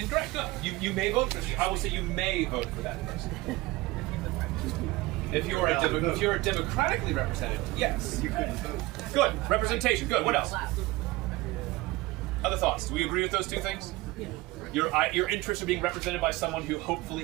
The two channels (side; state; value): left; quieter; 20.1 dB